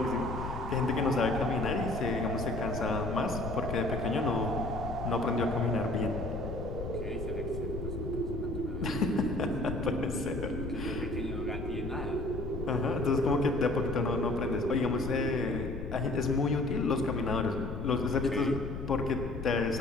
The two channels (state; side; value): noise; left; rumble, 6 dB below the sound